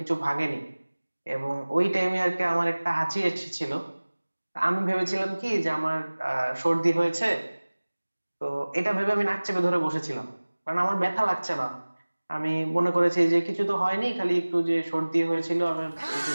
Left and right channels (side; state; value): both; inverted; correlation -1.00